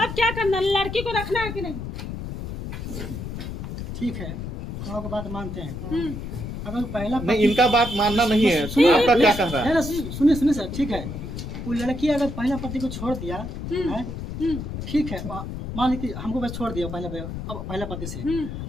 क्या करना है? लड़की को रखना है कि नहीं? ठीक है, हम आपकी बात मानते हैं। अगर पहला नहीं, इनका बात मानना नहीं है। आपका क्या कह रहा है? सुनिए सुनिए सर, ठीक है, वो लड़की अगर पहला पति को छोड़ दिया है, ठीक है, मान ली कि हमको बस छोड़ दिया पहला पति से,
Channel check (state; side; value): noise; left; rumble, 7 dB below the sound